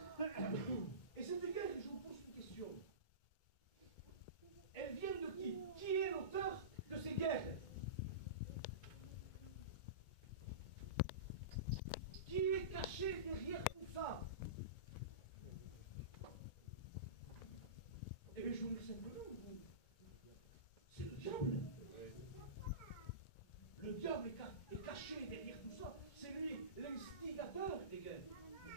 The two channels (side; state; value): right; late; 2.2 ms